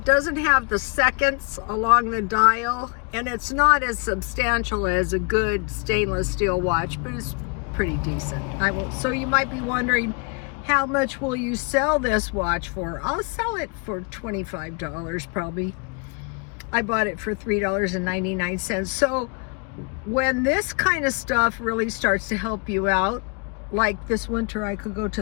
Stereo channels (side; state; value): right; quieter; 34.0 dB